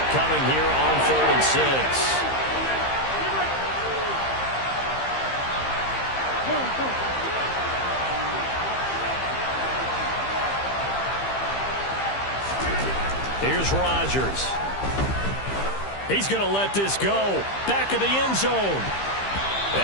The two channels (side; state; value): right; late; 15 ms